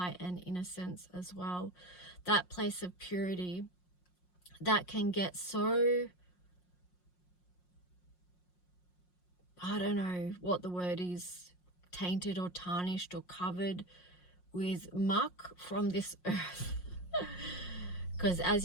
and innocence as well. That place of purity that can get so, I don't know what the word is, tainted or tarnished or covered with muck from this earth. Because as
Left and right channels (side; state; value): right; late; 5.6 ms